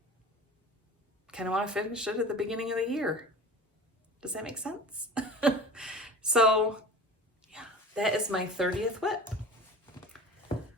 kind of want to finish it at the beginning of the year. Does that make sense? So, yeah, that is my 30th WIP.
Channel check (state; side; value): normal; both; correlation 0.38